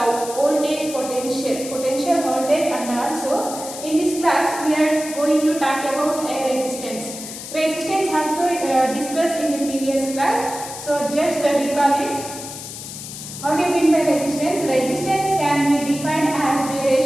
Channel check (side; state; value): left; noise; hiss, 10 dB below the sound